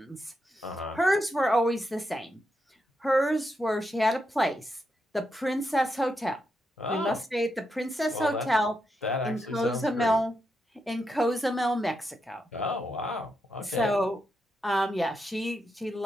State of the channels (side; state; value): both; normal; correlation 0.83